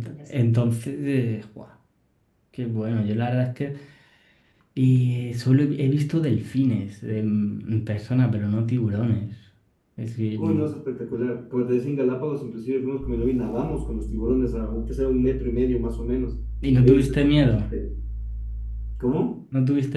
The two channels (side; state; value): both; identical; correlation 1.00